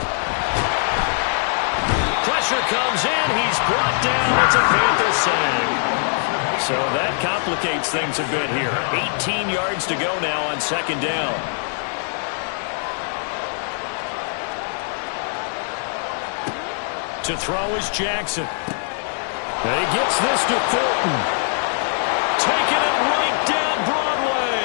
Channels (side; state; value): right; silent; 64 dB below the other